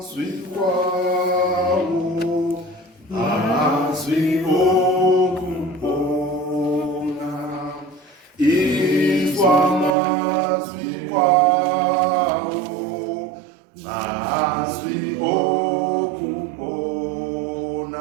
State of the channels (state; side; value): drops out; left; at 10.0 s